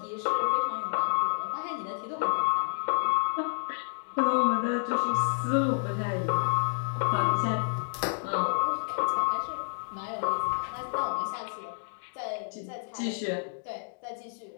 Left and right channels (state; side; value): silent; right; digital silence